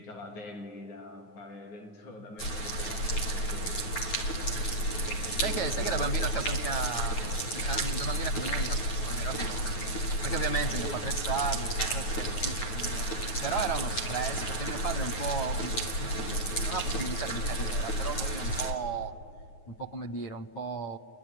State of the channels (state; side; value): late; right; 9.5 ms